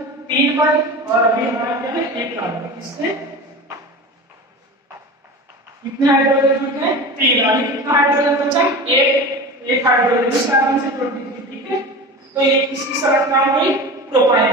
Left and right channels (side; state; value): both; normal; correlation 0.31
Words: 3 बन, और अभी हमारा क्या है, 1 कार्बन। इससे कितने हाइड्रोजन बचे, 3। अभी कितना हाइड्रोजन बचा, 1 हाइड्रोजन इस कार्बन से जोड़ दीजिए। ठीक है, तो ये किसकी संरचना हो गई,